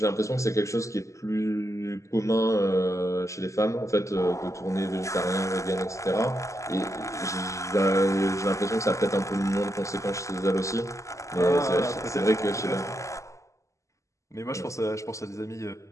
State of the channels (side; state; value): right; late; 0.15 ms